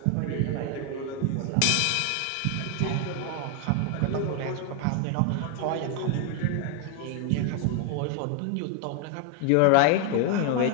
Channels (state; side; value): different; both; correlation 0.00